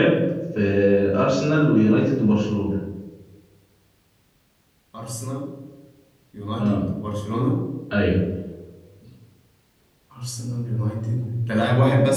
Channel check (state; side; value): identical; both; correlation 1.00